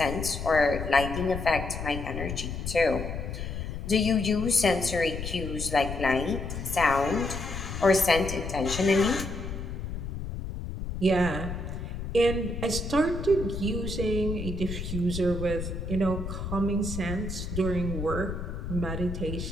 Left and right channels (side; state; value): left; noise; rumble, 6 dB below the sound